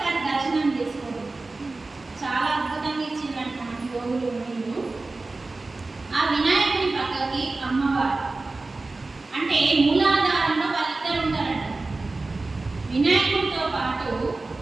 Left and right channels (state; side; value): quieter; left; 3.4 dB